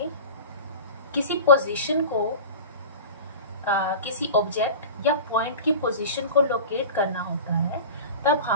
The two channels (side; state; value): both; inverted; correlation -0.34